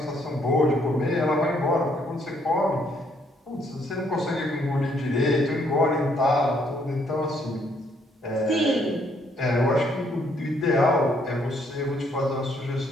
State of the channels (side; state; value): both; normal; correlation 0.69